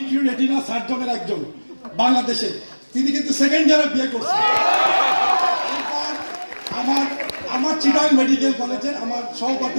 রেটিনা সার্জনের একজন বাংলাদেশে, তিনি কিন্তু 2nd ইয়ারে বিয়ে করছেন। আমার চিটাগাং মেডিকেল কলেজের আমার সহপাঠী,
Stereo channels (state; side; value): inverted; both; correlation -1.00